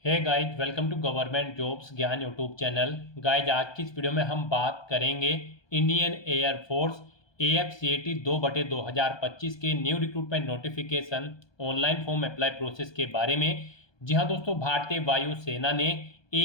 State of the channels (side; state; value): right; late; 1.2 ms